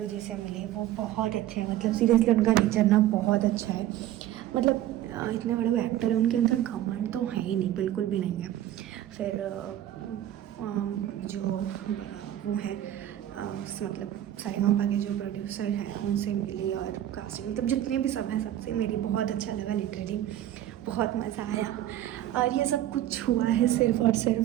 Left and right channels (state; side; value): quieter; left; 12.7 dB